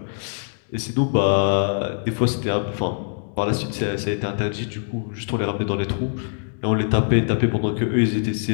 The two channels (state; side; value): silent; right; digital silence